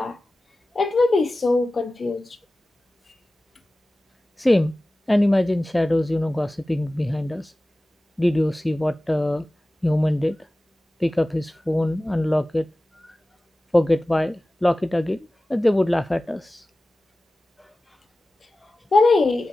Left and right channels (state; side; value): normal; both; correlation 0.96